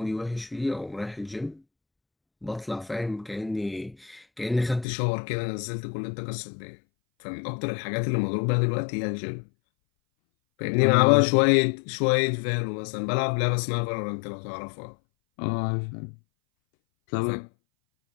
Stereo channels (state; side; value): drops out; right; at 4.9 s